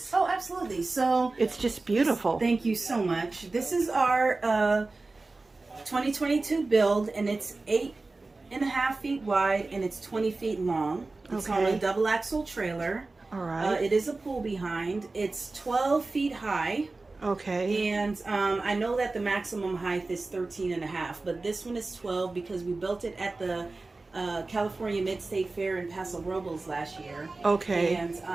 Oh, absolutely. So it's just beautiful. Thank you so much. This is our 2022 build, and it's 8.5 feet wide and it's 20 feet long. It's on a double axle trailer. All right. It is a pool behind. It's 12 feet high. Okay. And I know that the maximum height is 13.5, but this one is 12 because we built it at the California Mid-State Fair in Paso Robles last year. Okay.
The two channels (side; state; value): left; quieter; 3.4 dB